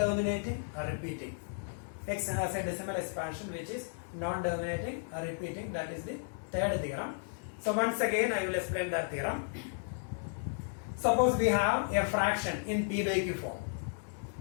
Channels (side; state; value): right; silent; digital silence